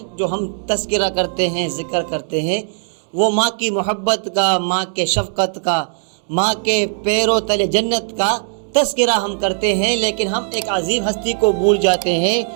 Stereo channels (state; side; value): silent; left; digital silence